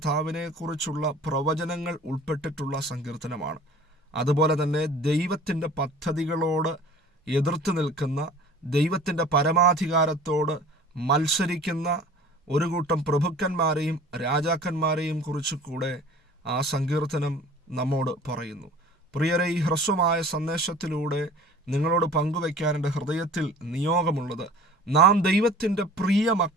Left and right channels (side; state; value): both; normal; correlation 0.45